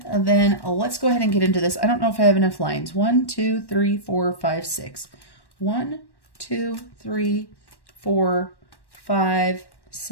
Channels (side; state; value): right; late; 1.1 ms